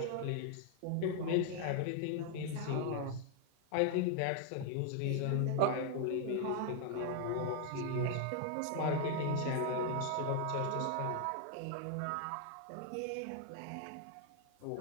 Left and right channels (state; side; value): different; both; correlation 0.00